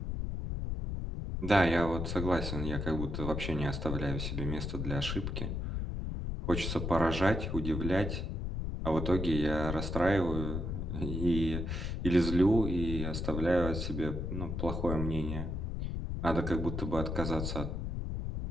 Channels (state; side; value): noise; left; rumble, 3 dB below the sound